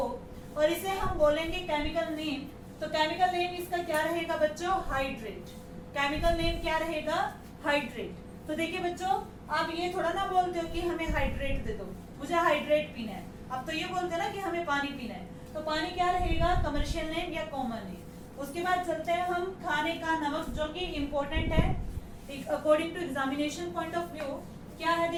और इसे हम बोलेंगे केमिकल नेम। तो केमिकल नेम इसका क्या रहेगा बच्चों, हाइड्रेट। केमिकल नेम क्या रहेगा, हाइड्रेट। तो देखिए बच्चों आप ये थोड़ा ना बोलते हो कि हमें हाइड्रेट दे दो, मुझे हाइड्रेट पीना है। अब तो ये बोलते हैं ना कि हमें पानी पीना है, तो पानी क्या रहेगा, कमर्शियल नेम या कॉमन नेम। उसके बाद चलते हैं हम खाने का नमक, जो कि इम्पोर्टेंट है according to examination point of view. क्या है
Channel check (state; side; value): identical; both; correlation 1.00